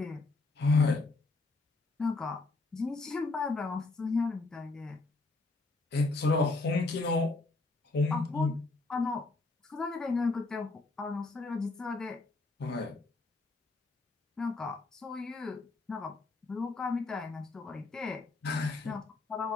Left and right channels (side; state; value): right; quieter; 3.4 dB